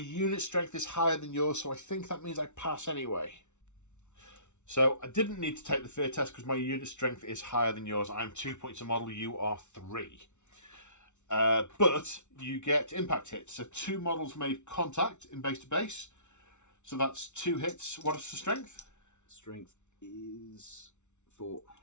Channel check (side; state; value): right; late; 0.83 ms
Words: strength is higher than yours, so I think that means I pass anyway. So I didn't need to take the fear test because my unit strength is higher than yours. I'm 2 points a model. You are 3. But you get impact hits. So 2 models made contact in base to base. So that's 2 hits. What is the strength? Strength is 4.